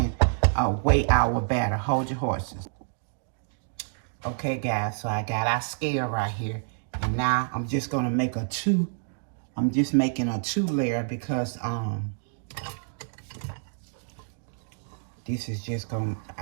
weigh our batter. Hold your horses. Okay, guys, so I got our scale right here. And now I'm just gonna make a 2. I'm just making a 2 layer because this is just gonna,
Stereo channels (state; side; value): silent; left; digital silence